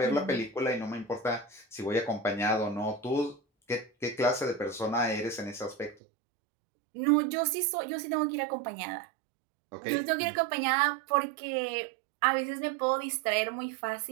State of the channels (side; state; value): left; drops out; at 6.0 s